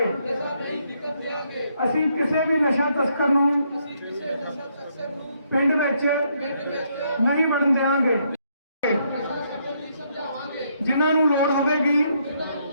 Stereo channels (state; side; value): inverted; both; correlation -0.73